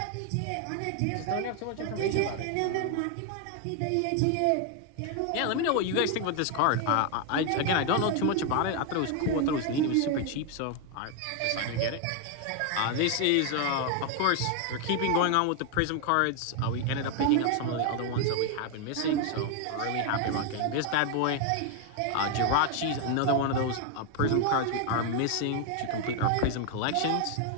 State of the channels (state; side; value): different; both; correlation 0.01